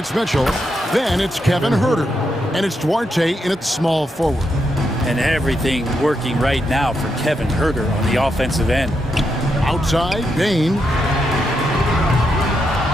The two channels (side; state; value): both; normal; correlation 0.82